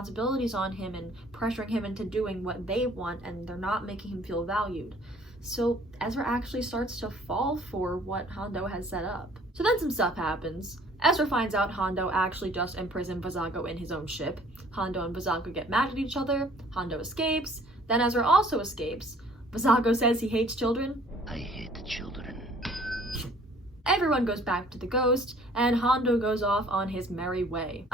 on him and pressuring him into doing what they want, and they're not making him feel valued. So Ezra actually starts to fall for what Hondo has set up. So then some stuff happens. Ezra finds out Hondo actually just imprisoned Vizago in his own ship. Hondo and Vizago get mad at each other. Hondo escapes. Then Ezra also escapes. Vizago says he hates children. I hate children. Everyone goes back to the Ghost, and Hondo goes off on his merry way.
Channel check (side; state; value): both; normal; correlation 0.55